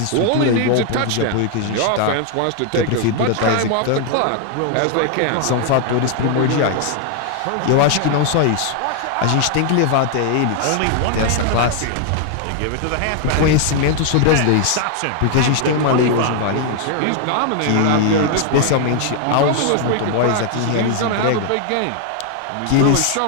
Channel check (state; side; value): different; both; correlation 0.00